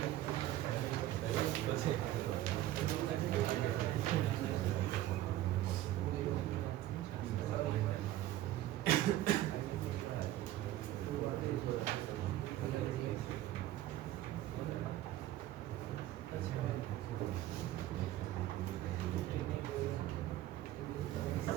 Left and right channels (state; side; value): quieter; left; 14.2 dB